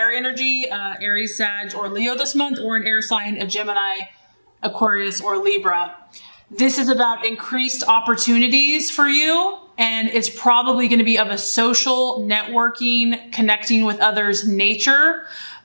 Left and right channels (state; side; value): inverted; both; correlation -1.00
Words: energy, Aries, Sag, or Leo this month, or an air sign, a Gemini, Aquarius, or Libra. This is about increased opportunities for you, and it's probably going to be of a social, networking, connecting with others nature.